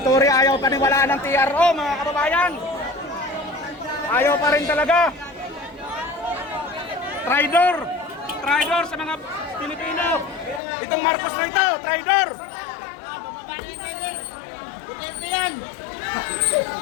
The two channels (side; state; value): right; drops out; at 10.6 s